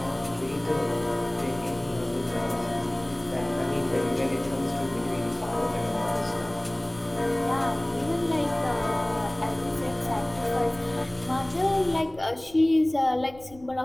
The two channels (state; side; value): noise; left; rumble, 21 dB below the sound